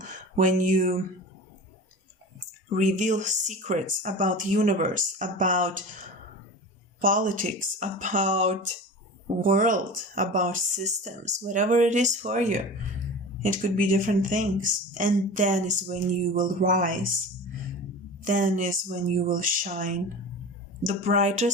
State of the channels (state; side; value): normal; both; correlation 0.33